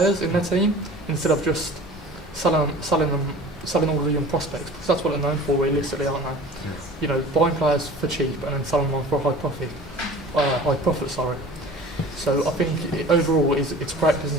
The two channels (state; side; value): normal; both; correlation 0.42